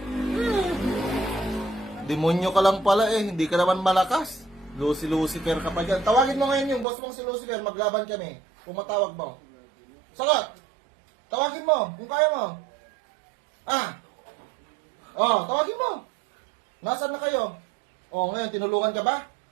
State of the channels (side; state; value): left; drops out; at 6.9 s